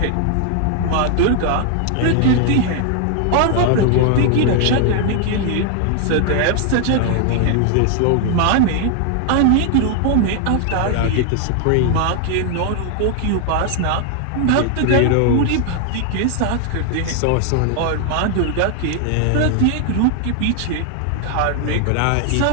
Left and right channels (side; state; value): both; different; correlation 0.00